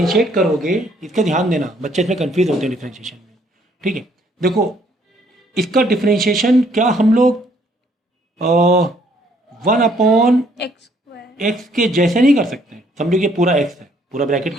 करोगे, इसका ध्यान देना, बच्चे इसमें कंफ्यूज होते हैं डिफ्रेंशिएशन में, ठीक है। देखो इसका डिफ्रेंशिएशन क्या हम लोग 1/x एक्स के जैसे नहीं कर सकते। समझो कि पूरा x है, पूरा ब्रैकेट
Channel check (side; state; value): both; normal; correlation 0.65